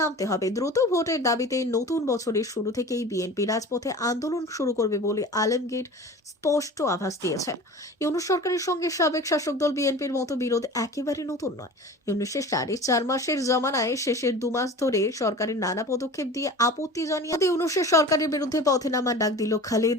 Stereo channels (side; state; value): both; normal; correlation 0.38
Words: নামতে হবে। দ্রুত ভোটের দাবিতে নতুন বছরের শুরু থেকেই বিএনপি রাজপথে আন্দোলন শুরু করবে বলে আলমগীর স্পষ্ট আভাস দিয়েছেন। ইউনূস সরকারের সঙ্গে সাবেক শাসক দল বিএনপির মতো বিরোধ একেবারে নতুন নয়। ইউনূসের 4.5 মাসের জমানায় শেষের 2 মাস ধরে সরকারের নানা পদক্ষেপ দিয়ে আপত্তি জানিয়ে ইউনূসের সরকারের বিরুদ্ধে পথে নামার ডাক দিল